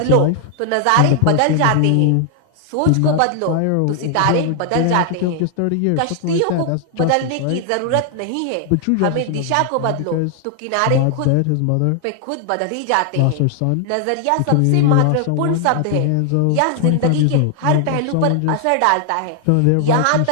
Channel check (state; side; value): different; both; correlation 0.00